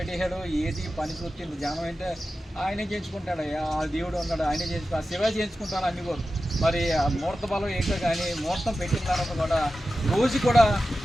ఏది పని చూస్తే జనం అంటే ఆయనే చేయించుకుంటాడు, ఆ దేవుడు ఉన్నాడు ఆయనే చేయించుకో, ఆ శివ చేయించుకుంటాడు అన్ని కూడా. మరి ఆ ముహూర్త బలం ఏంటో కానీ ముహూర్తం పెట్టిన తర్వాత కూడా రోజు కూడా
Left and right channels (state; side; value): normal; both; correlation 0.93